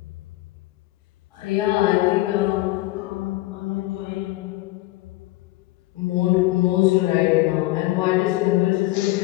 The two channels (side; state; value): right; quieter; 18.9 dB